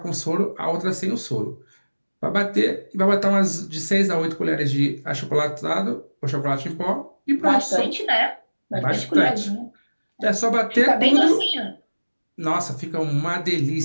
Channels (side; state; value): both; inverted; correlation -1.00